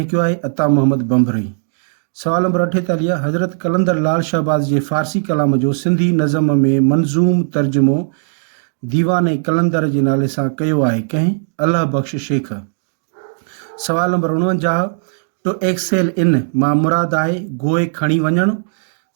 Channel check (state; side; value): silent; left; digital silence